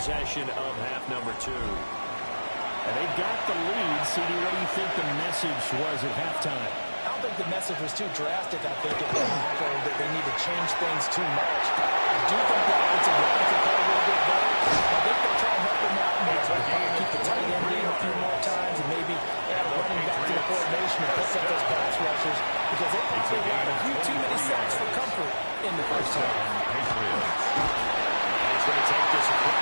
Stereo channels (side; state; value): both; inverted; correlation -1.00